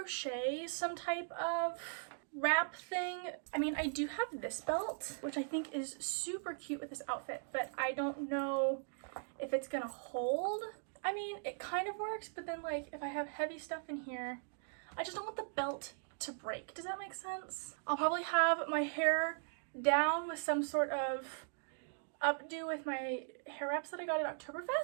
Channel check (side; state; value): left; silent; digital silence